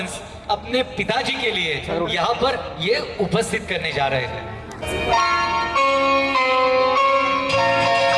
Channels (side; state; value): both; identical; correlation 1.00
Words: अपने पिताजी के लिए यहाँ पर ये उपस्थित करने जा रहे हैं।